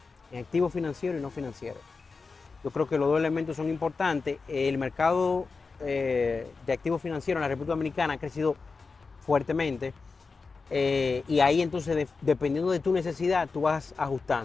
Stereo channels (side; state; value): right; quieter; 4.5 dB